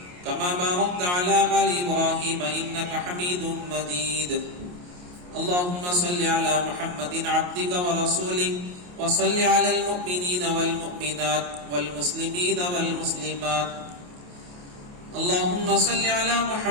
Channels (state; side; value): late; left; 28 ms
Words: كما باركت على آل إبراهيم إنك حميد مجيد. اللهم صل على محمد عبدك ورسولك وصل على المؤمنين والمؤمنات والمسلمين والمسلمات. اللهم صل على